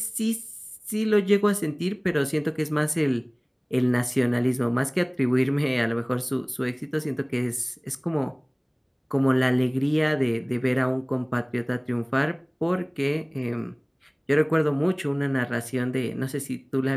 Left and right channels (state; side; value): identical; both; correlation 1.00